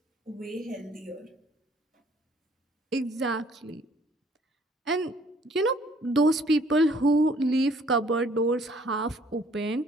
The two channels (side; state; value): both; normal; correlation 0.60